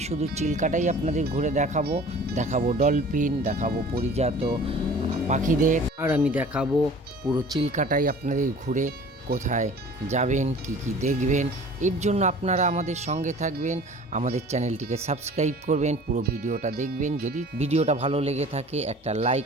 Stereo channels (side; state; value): both; normal; correlation 0.45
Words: শুধু চিল্কাটাই আপনাদের ঘুরে দেখাবো ডলফিন, দেখাবো পরিজাত পাখিদের, আর আমি দেখাবো পুরো চিল্কাটাই আপনাদের ঘুরে কোথায় যাবেন, কি দেখবেন। এর জন্য আপনারা আমাদের সঙ্গে থাকবেন, আমাদের চ্যানেলটিকে সাবস্ক্রাইব করবেন, পুরো ভিডিওটা দেখবেন। যদি ভিডিওটা ভালো লেগে থাকে একটা লাইক